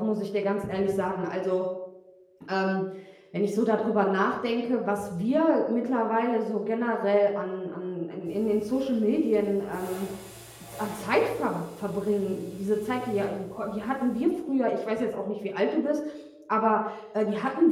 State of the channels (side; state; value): both; identical; correlation 1.00